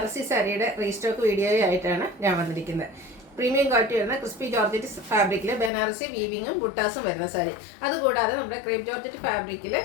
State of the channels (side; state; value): right; drops out; at 5.7 s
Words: സാരിയുടെ റീസ്റ്റോക്ക് വീഡിയോയായിട്ടാണ് ഞാൻ വന്നിരിക്കുന്നത്. പ്രീമിയം ക്വാളിറ്റി വരുന്ന ക്രിസ്പി ജോർജറ്റ് ഫാബ്രിക്കിൽ ബനാറസി വീവിങ്ങും ബുട്ടാസും വരുന്ന സാരി. അതുകൂടാതെ നമ്മുടെ ക്രേപ്പ് ജോർജറ്റ് ഫാബ്രിക്കിൽ